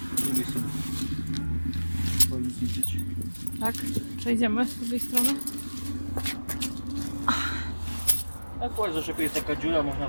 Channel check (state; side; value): inverted; both; correlation -1.00